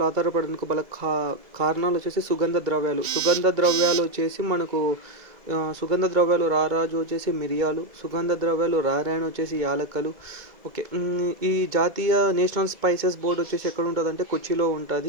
ఆధారపడేందుకు కారణాలు వచ్చేసి సుగంధ ద్రవ్యాలు వచ్చేసి మనకు సుగంధ ద్రవ్యాలు రారాజు వచ్చేసి మిరియాలు, సుగంధ ద్రవ్యాలు రారాయణ వచ్చేసి యాలక్కలు. ఓకే. ఈ జాతీయ నేషనల్ స్పైసెస్ బోర్డు వచ్చేసి ఎక్కడ ఉంటుంది అంటే కొచ్చిలో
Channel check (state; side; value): late; left; 2.0 ms